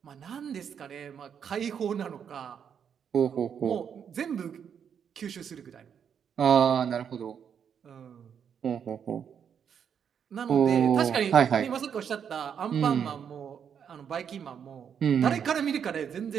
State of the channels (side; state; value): left; quieter; 7.8 dB